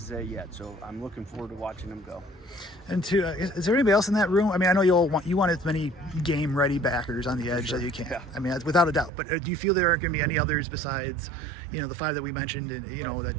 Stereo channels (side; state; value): left; drops out; at 9.1 s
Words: Zay yet. So I'm looking forward to watching him go. And is there anybody else in that room? I know you want as many game-ready backers on the edge that you can. Yeah. Without a doubt. But do you feel there aren't going to be any others besides, the 5 that we mentioned, and